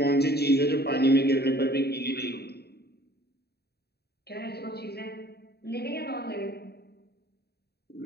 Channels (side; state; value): right; late; 0.47 ms